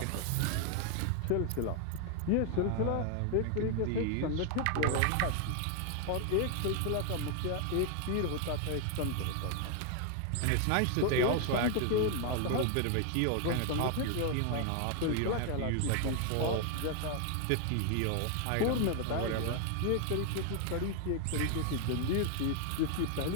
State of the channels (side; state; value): both; different; correlation 0.00